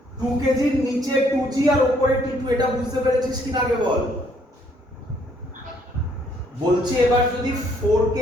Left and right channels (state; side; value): normal; both; correlation 0.67